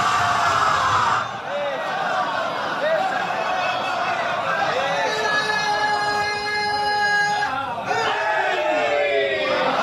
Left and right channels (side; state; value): both; identical; correlation 1.00